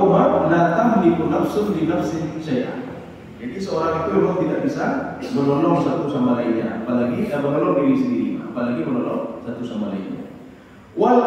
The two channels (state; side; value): identical; both; correlation 1.00